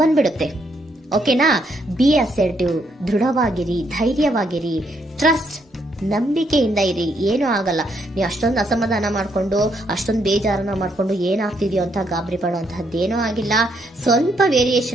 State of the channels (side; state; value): both; normal; correlation 0.74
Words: ಬಂದ್ಬಿಡುತ್ತೆ. ಓಕೆನಾ? ಬಿ ಅಸರ್ಟಿವ್, ದೃಢವಾಗಿರಿ, ಧೈರ್ಯವಾಗಿರಿ, ಟ್ರಸ್ಟ್, ನಂಬಿಕೆಯಿಂದ ಇರಿ, ಏನೂ ಆಗಲ್ಲ. ನೀವು ಅಷ್ಟೊಂದು ಅಸಮಾಧಾನ ಮಾಡ್ಕೊಂಡು ಅಷ್ಟೊಂದು ಬೇಜಾರನ್ನ ಮಾಡ್ಕೊಂಡು ಏನಾಗ್ತಿದೆಯೋ ಅಂತ ಗಾಬರಿ ಪಡುವಂತಹದ್ದೇನೂ ಆಗಿಲ್ಲ. ಸ್ವಲ್ಪ